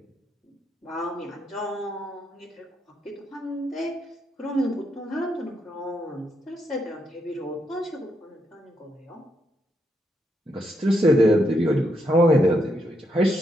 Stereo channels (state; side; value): normal; both; correlation 0.79